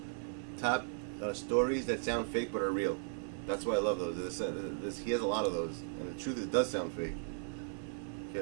Top Stories That Sound Fake But Are Real. That's why I love those. He has a lot of those, and the truth is, it does sound fake. Okay,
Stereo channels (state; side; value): silent; left; digital silence